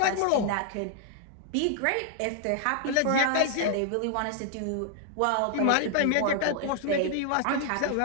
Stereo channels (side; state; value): both; different; correlation 0.00